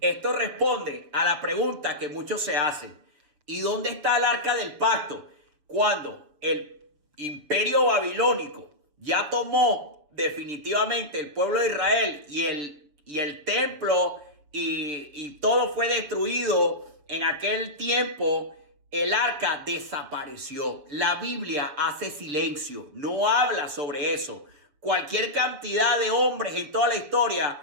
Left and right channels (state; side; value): late; left; 6.8 ms